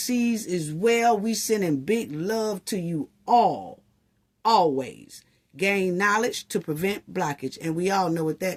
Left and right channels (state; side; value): identical; both; correlation 1.00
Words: as well. We sending big love to you all. Always. Gain knowledge to prevent blockage. And we all know what